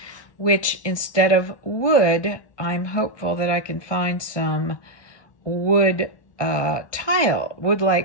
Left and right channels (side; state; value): right; late; 1.2 ms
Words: which instead of wood, I'm hopeful that I can find some wood tile,